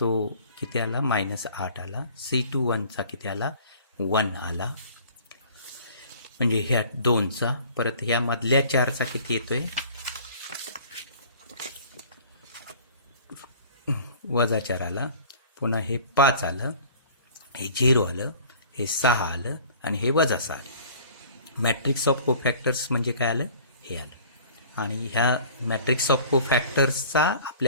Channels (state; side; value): inverted; both; correlation -0.49